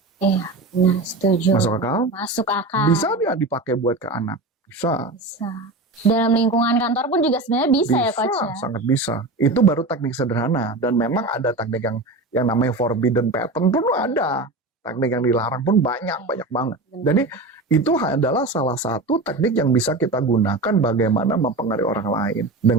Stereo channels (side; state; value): left; quieter; 3.0 dB